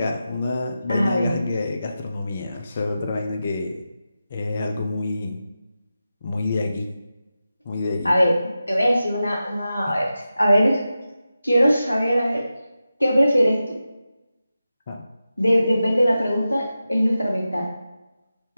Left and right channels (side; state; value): both; inverted; correlation -0.92